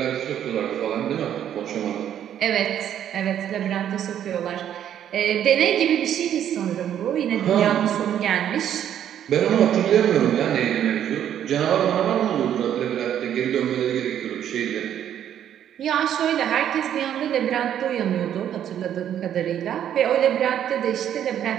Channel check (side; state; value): left; quieter; 10.1 dB